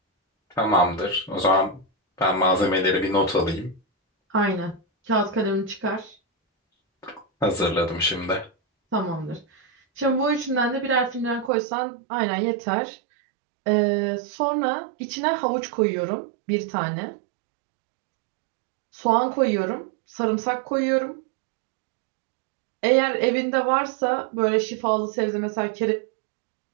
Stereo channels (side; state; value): left; drops out; at 11.5 s